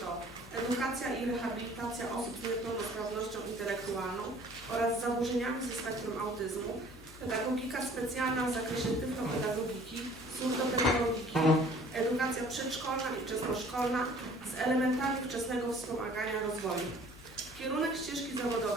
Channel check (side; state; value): both; normal; correlation 0.52